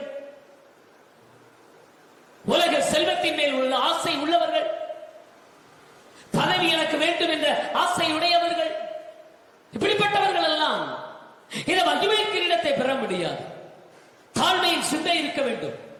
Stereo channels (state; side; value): identical; both; correlation 1.00